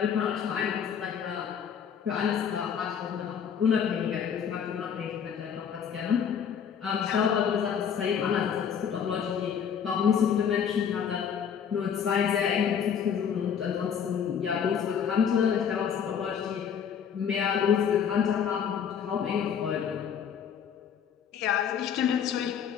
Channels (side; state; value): right; quieter; 7.7 dB